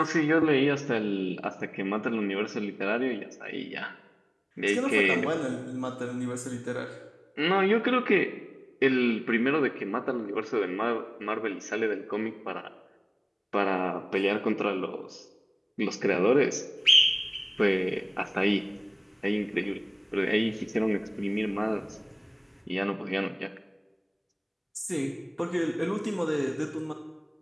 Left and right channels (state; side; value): identical; both; correlation 1.00